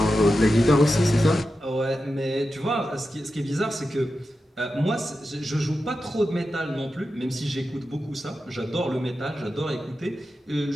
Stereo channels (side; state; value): both; normal; correlation 0.91